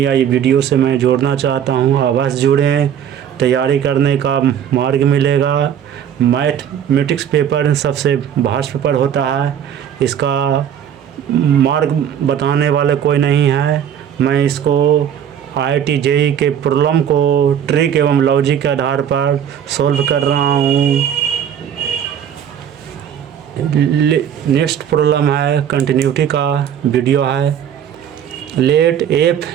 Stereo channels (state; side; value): quieter; left; 9.2 dB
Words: ये वीडियो से मैं जोड़ना चाहता हूं। अवश्य जुड़ें, तैयारी करने का मार्ग मिलेगा। मैथमेटिक्स पेपर सबसे भास्ट पेपर होता है, इसका मार्ग बताने वाले कोई नहीं है। मैं इसको आईआईटी जेई के प्रॉब्लम को ट्रिक एवं लॉजिक के आधार पर सॉल्व कर रहा हूँ। नेक्स्ट प्रॉब्लम है, कंटिन्यूटी का वीडियो है। Let F